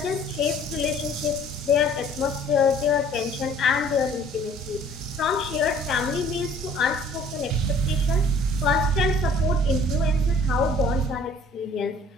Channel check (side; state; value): both; normal; correlation 0.54